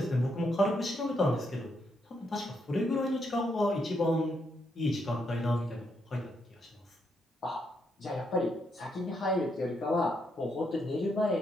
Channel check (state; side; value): normal; both; correlation 0.78